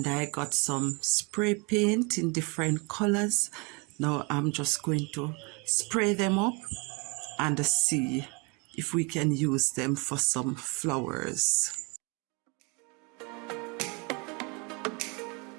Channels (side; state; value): left; quieter; 30.8 dB